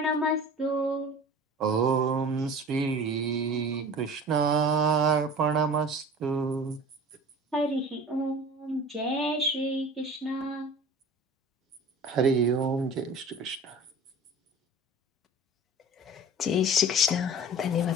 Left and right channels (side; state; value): both; normal; correlation 0.40